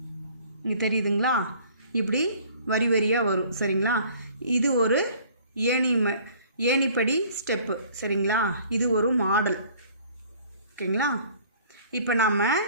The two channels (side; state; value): both; inverted; correlation -0.53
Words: இங்கே தெரியுதுங்களா? இப்படி வரி வரியாக வரும். சரிங்களா? இது ஒரு ஏணிப்படி ஸ்டெப்பு. சரிங்களா? இது ஒரு மாடல். ஓகேங்களா? இப்போ நம்ம